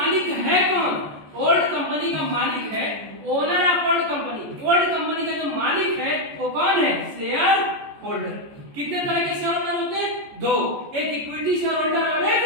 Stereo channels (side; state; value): left; late; 14 ms